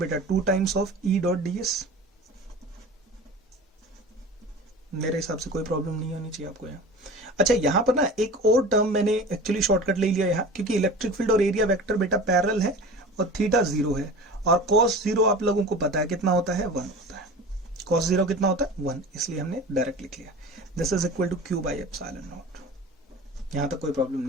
बेटा, 2 times of E dot ds। मेरे हिसाब से कोई प्रॉब्लम नहीं होनी चाहिए आपको यहाँ। अच्छा, यहां पर ना एक और टर्म मैंने एक्चुअली शॉर्टकट ले लिया यहाँ, क्योंकि इलेक्ट्रिक फील्ड और एरिया वेक्टर बेटा पैरेलल है और थीटा 0 है, और cos 0 आप लोगों को पता है कितना होता है, 1 होता है। cos 0 कितना होता है, 1, इसलिए हमने डायरेक्ट लिख लिया, this is equal to Q by epsilon naught. यहां तक कोई प्रॉब्लम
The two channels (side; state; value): both; normal; correlation 0.36